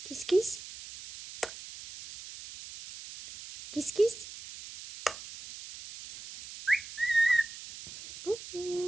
Kiss, kiss. Kiss, kiss.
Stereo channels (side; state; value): right; noise; hiss, 14 dB below the sound